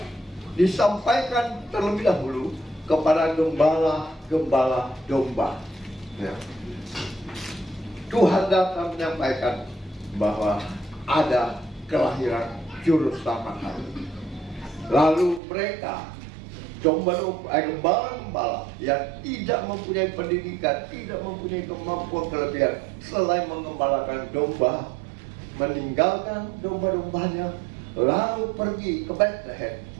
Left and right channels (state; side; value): drops out; left; at 15.4 s